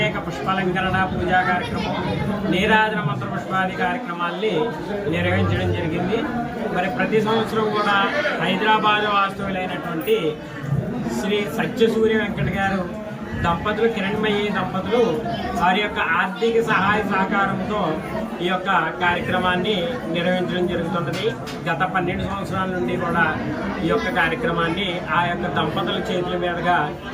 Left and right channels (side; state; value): both; identical; correlation 1.00